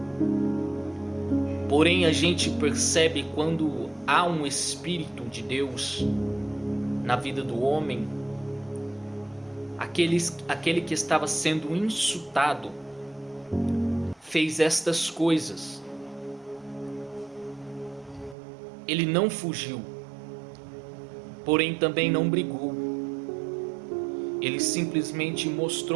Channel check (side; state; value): left; drops out; at 18.4 s